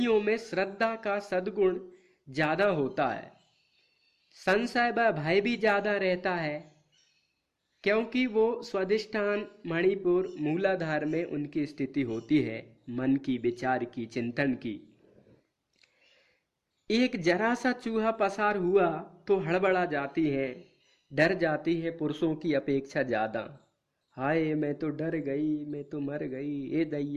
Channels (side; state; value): both; identical; correlation 1.00